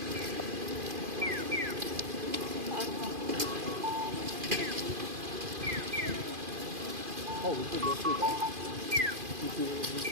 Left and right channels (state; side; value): late; left; 2.5 ms